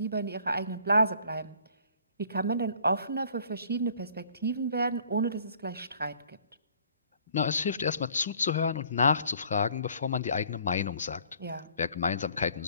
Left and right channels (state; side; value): inverted; both; correlation -0.57